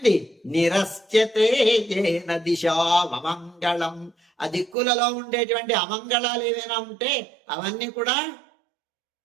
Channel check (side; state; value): left; drops out; at 4.8 s